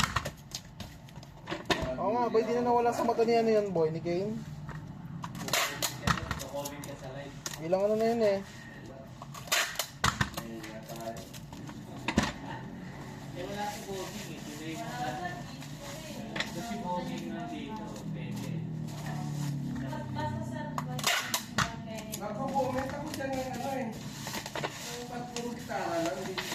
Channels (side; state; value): both; identical; correlation 1.00